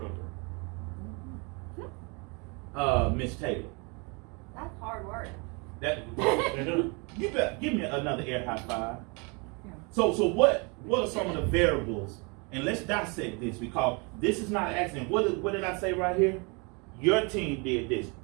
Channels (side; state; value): left; quieter; 31.4 dB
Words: stronger. Miss Taylor. That's hard work. You better give me another air high five. Yeah. So what are some of the variables? And let's dissect this, because this is not an accident. What did I say right here? Your team did this.